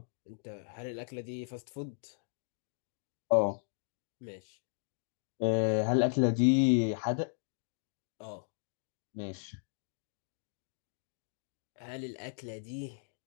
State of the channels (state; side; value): silent; right; digital silence